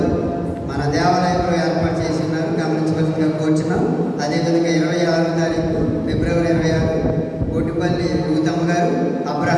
మన దేవాలయంలో ఏర్పాటు చేసి ఉన్నారు, గమనించవలసిందిగా కోరుచున్నాం. అదేవిధంగా 26వ తారీఖు ఫిబ్రవరి 26 కోటిపల్లి రూతమ్మ గారు,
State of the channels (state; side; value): identical; both; correlation 1.00